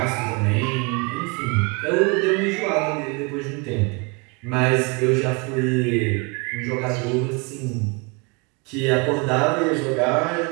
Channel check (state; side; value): quieter; left; 30.4 dB